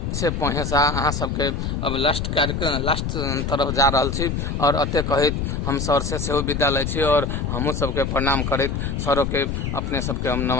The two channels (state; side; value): noise; left; rumble, 2 dB below the sound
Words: से पहुँचा अहाँ सबके अब लास्ट तरफ जा रहा छी और अते कहित हम सर से सेहो विदा लै छी और हमहूँ सबके प्रणाम करैत सरों के अपने सबके हम